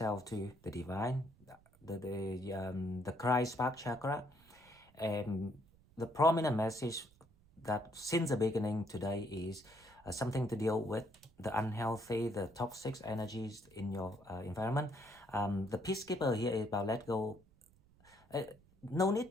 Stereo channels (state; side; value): noise; right; rumble, 28 dB below the sound